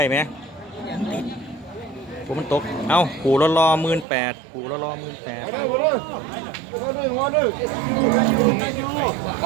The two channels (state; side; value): drops out; left; at 4.0 s